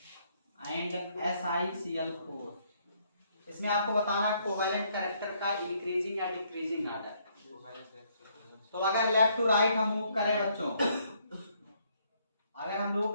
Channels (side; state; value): both; inverted; correlation -0.69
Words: and SiCl4। इसमें आपको बताना कोवैलेंट कैरेक्टर का इंक्रीजिंग या डिक्रीजिंग ऑर्डर। तो अगर लेफ्ट टू राइट हम मूव करें बच्चों, अगर हम